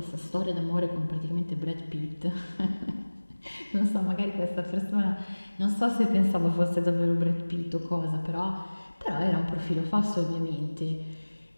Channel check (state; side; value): inverted; both; correlation -1.00